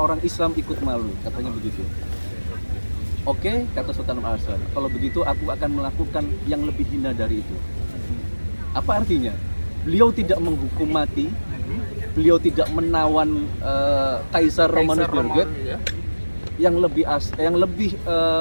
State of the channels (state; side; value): inverted; both; correlation -1.00